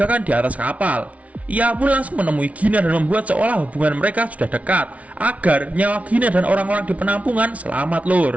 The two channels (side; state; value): left; late; 0.066 ms